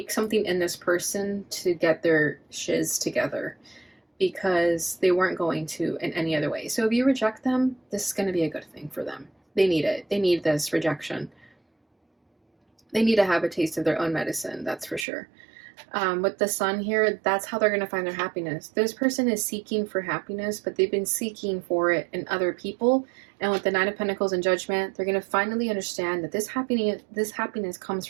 something in this person to get their shiz together, because they weren't going to in any other way. So if you reject them, this is going to be a good thing for them. They need it. They need this rejection. They need to have a taste of their own medicine, that's for sure. With the sun here, that's how they're going to find their happiness. This person is seeking for happiness, but they've been seeking for it in other people. And with the Nine of Pentacles and Judgment, they're going to finally understand that this happiness comes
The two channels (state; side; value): drops out; left; at 15.1 s